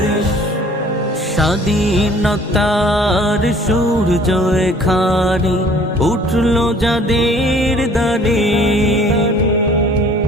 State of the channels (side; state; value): both; normal; correlation 0.54